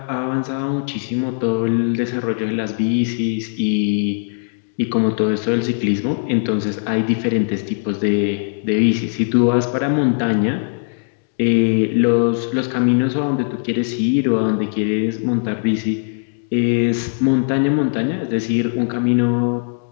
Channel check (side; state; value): right; silent; digital silence